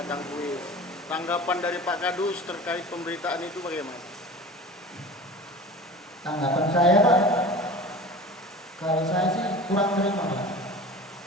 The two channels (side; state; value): both; normal; correlation 0.37